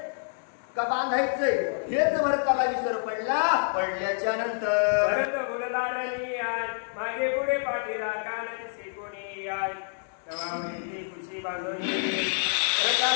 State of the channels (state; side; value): silent; right; digital silence